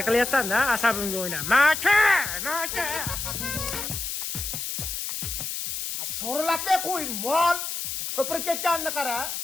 qilyapsan-da, asabimga o'yna. Maka! Sho'rlatmay qo'y, mol. Ko'pirib ketganini qara.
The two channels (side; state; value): left; noise; hiss, 4 dB below the sound